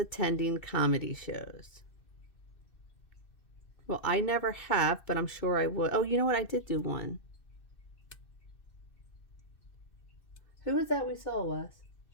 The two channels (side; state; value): right; late; 2.6 ms